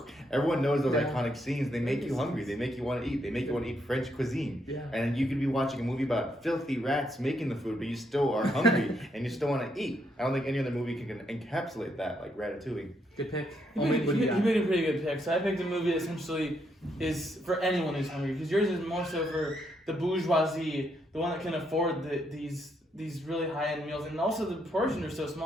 Everyone knows those iconic scenes. They make you hungry. They make you want to eat. They make you want to eat French cuisine. Yeah. And you could be watching a movie about filthy rats making the food, but you still are hungry and you still want to eat. I don't think any other movie can encapsulate that like Ratatouille. Good pick. He Omid, what do you got? made a pretty good pick. So I picked a movie that essentially is for anyone who's hungry, because yours is more so for the bourgeoisie, the one that can afford these really high-end meals, and also the portions are so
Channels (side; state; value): both; normal; correlation 0.76